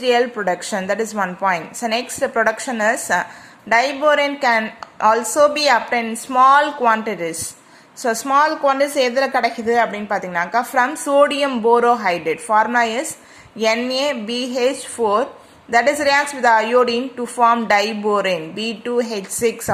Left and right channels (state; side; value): identical; both; correlation 1.00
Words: production. That is one point. So next production is diborane can also be obtained in small quantities. So small quantities எதில் கிடைக்குது அப்படின்னு பார்த்தீங்கன்னாக்கா from sodium borohydride. Formula is NaBH4 that is reacts with the iodine to form diborane B2H6